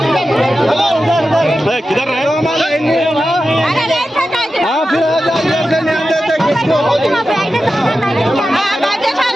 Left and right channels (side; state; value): both; normal; correlation 0.92